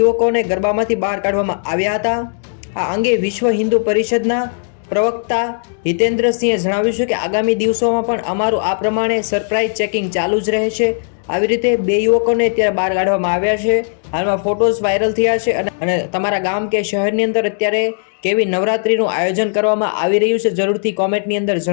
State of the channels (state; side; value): silent; right; digital silence